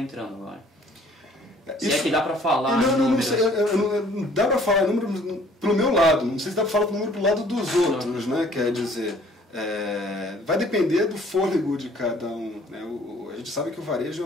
agora? Se é que dá para falar não sei, dá para falar número pro meu lado, não sei se dá para falar número pro lado dos outros, né? Quer dizer, vai depender do fôlego de cada um, né? A gente sabe que o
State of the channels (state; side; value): normal; both; correlation 0.57